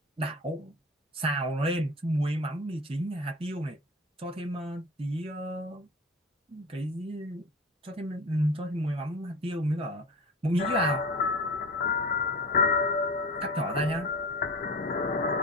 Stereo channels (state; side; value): normal; both; correlation 0.33